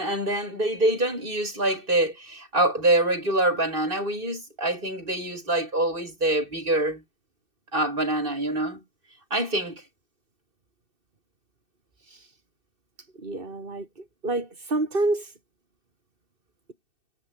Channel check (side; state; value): left; late; 2.6 ms